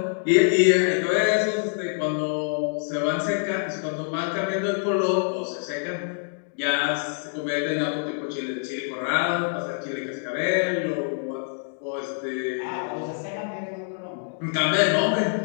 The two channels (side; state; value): right; silent; 61 dB below the other